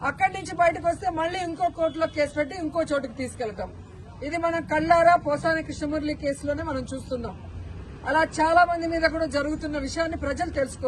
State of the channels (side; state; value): both; identical; correlation 1.00